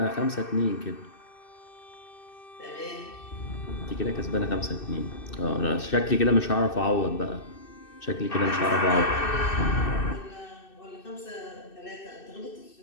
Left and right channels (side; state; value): right; late; 2.6 ms